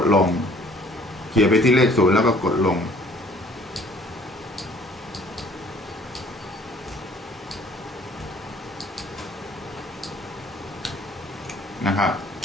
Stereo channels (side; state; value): both; normal; correlation 0.56